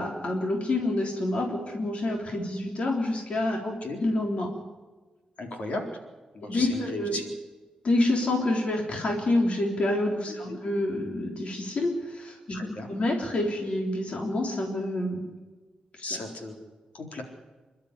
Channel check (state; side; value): normal; both; correlation 0.81